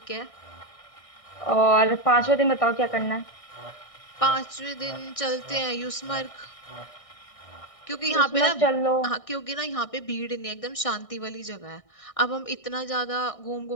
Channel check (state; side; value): late; right; 1.6 ms